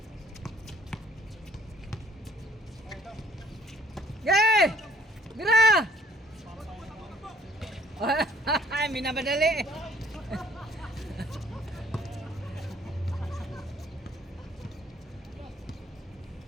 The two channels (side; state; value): both; normal; correlation 0.59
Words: Yay! Mira! Ay, minamadali.